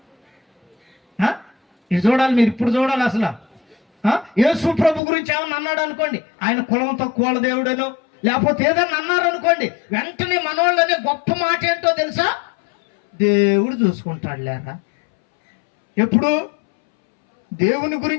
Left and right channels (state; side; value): drops out; right; at 5.0 s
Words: ఇది చూడాలి, మీరు ఇప్పుడు చూడాలి. అసలు యేసు ప్రభు గురించి ఏమన్నా అన్నాడు అనుకోండి, ఆయన కులం తక్కువ వాళ్ళ దేవుడేనో, లేకపోతే ఏదన్నా అన్నారు అనుకోండి, వెంటనే మనోళ్ళనే గొప్ప మాట ఏంటో తెలుసా? దేవుడు చూసుకుంటాడు లేరా. ఎప్పుడు దేవుని